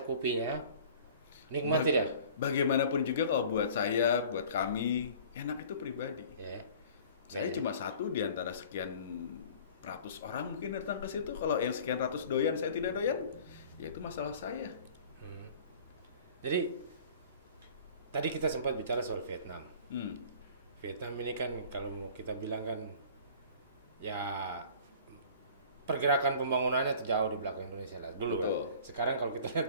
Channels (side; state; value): both; inverted; correlation -0.47